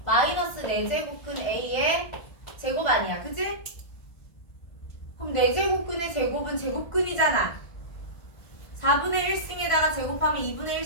마이너스 4제곱근 a의 제곱 아니야. 그치? 그럼 4제곱근의 제곱은 제곱근이잖아. 4분의 1승에다가 제곱하면 2분의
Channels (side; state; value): right; late; 1.5 ms